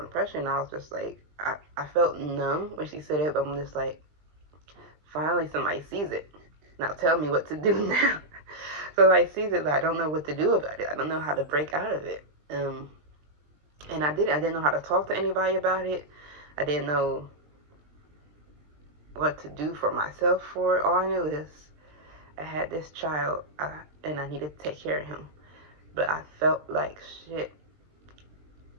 depression. And I was just like, I felt numb when she said it, but I'm just like, finally somebody sees it. Now tell me what to do now. So I sees it, but I don't know what to do about it. I don't know how to break out of it. And I didn't know how to talk to anybody about it. I didn't know what to do for myself for it. All I knew is I had this child, and I needed to take care of him. But I felt like shit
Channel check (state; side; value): late; left; 20 ms